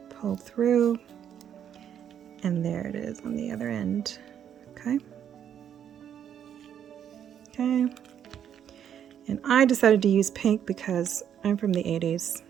pulled through, and there it is on the other end. Okay. Okay. And I decided to use pink because I'm from the 80s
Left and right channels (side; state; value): left; quieter; 9.2 dB